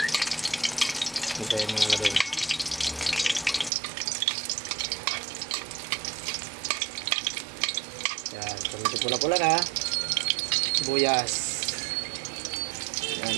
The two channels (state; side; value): drops out; left; at 3.7 s